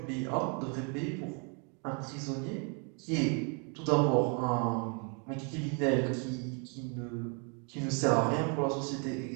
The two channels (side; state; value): left; quieter; 37.3 dB